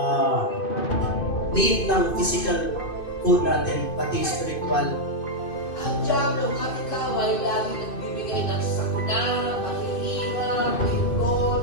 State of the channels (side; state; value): right; late; 2.5 ms